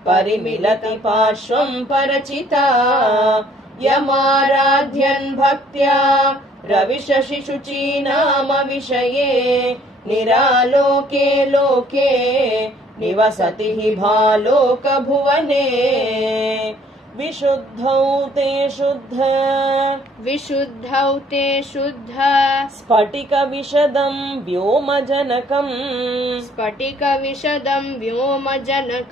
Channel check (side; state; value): both; normal; correlation 0.60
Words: परिमिलति पार्श्वं परचिता यमाराध्यन् भक्त्या रविशशिशुचीनामविषये निरालोके लोके निवसति हि भालोकभुवने विशुद्धौ ते शुद्ध विशुद्धौ ते शुद्ध स्फटिकविशदं व्योमजनकम् स्फटिकविशदं